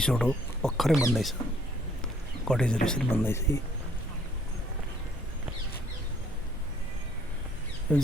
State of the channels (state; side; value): normal; both; correlation 0.62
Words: हो भर्खरै बन्दैछ कटेजहरू यसरी बन्दैछ यो